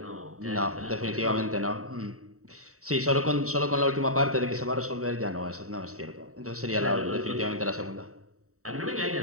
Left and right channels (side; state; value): left; late; 0.64 ms